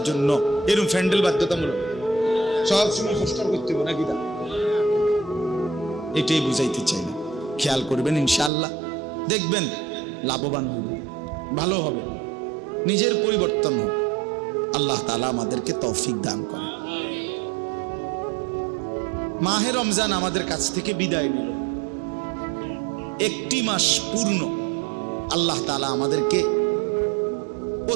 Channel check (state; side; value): drops out; left; at 8.5 s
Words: জন্য এরম প্যান্ডেল বাধ্যতামূলক। সবসময় পোস্টার করতে হইব নাকি? এটাই বুঝাইতে চাই না। খেয়াল করবেন, ইনশাআল্লাহ দেখবেন লাভবান হবে, ভালো হবে, নিজের পরিবর্তন হবে। আল্লাহ তাআলা আমাদেরকে তৌফিক দান করে। মাহে রমজান আমাদের কাছ থেকে বিদায় নিল। 1টি মাস পূর্ণ আল্লাহ তাআলা আমাদেরকে